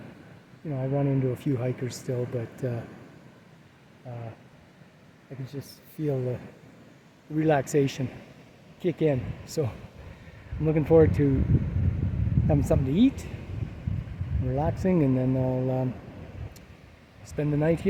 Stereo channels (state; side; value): identical; both; correlation 1.00